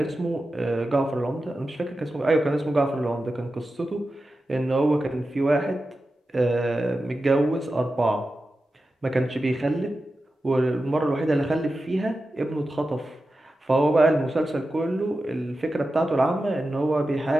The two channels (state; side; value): normal; both; correlation 0.92